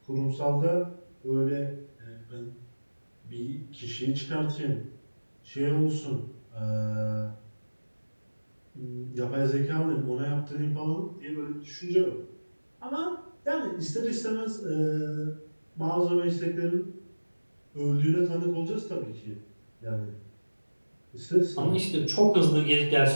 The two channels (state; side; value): inverted; both; correlation -1.00